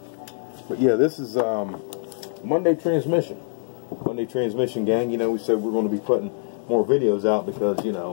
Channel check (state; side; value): silent; right; digital silence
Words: But yeah, this is Monday transmission. Monday transmission, gang. You know, we said we're going to be putting more videos out because, you